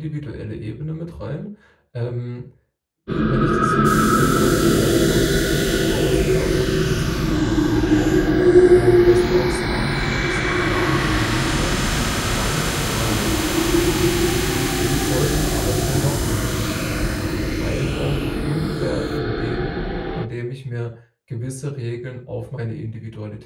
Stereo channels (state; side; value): identical; both; correlation 1.00